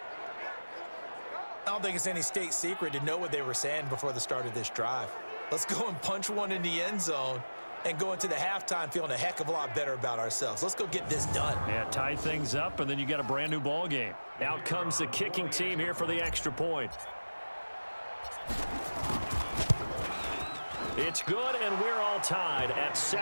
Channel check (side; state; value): both; inverted; correlation -1.00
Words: I don't think it's any state secret to know what they were saying before the start of this drive. Let's go and punch one in the end zone and go into the halftime feeling a heck of a lot better about ourselves. Let's go get this done. Yeah, tie things up, and then you got a brand new ball game. Out comes the kicking team here for the extra point. It's good, and we're all tied at